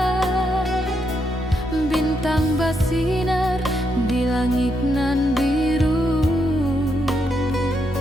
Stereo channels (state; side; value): normal; both; correlation 0.80